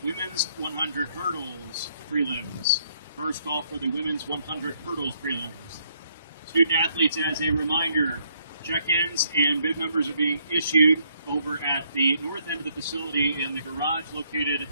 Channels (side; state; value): both; inverted; correlation -0.70